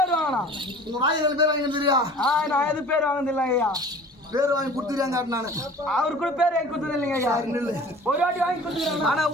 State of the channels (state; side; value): normal; both; correlation 0.45